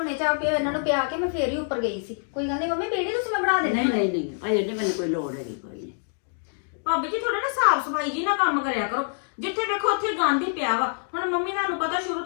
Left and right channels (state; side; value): silent; right; 61 dB below the other